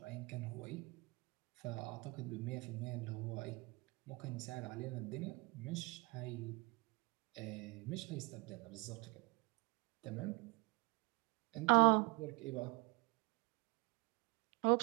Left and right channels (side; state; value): left; quieter; 27.9 dB